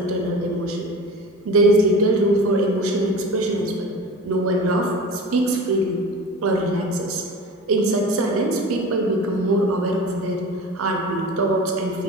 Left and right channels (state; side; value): normal; both; correlation 0.35